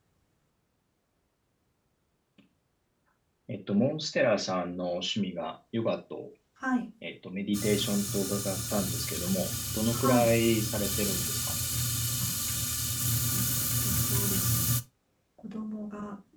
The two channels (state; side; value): identical; both; correlation 1.00